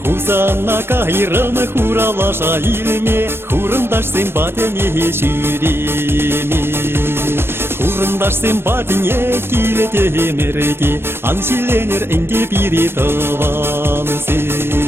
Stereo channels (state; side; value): late; left; 0.11 ms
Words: кайрымы хуралаша илме, Хурындаш симпатыне жүреме. Хурындаш симпатыне килетемерде, Ансиленер энде бири тывансын.